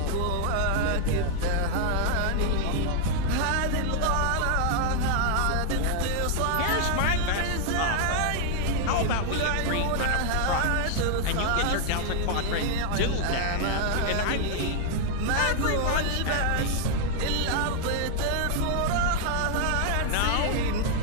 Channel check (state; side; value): different; both; correlation 0.00